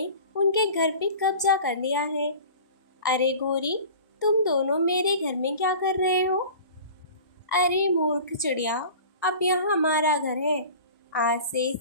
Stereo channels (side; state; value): both; inverted; correlation -0.41